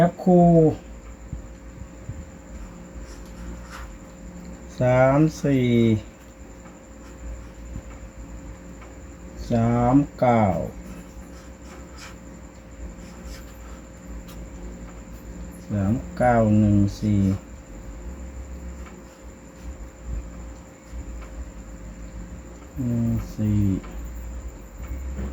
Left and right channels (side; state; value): both; identical; correlation 1.00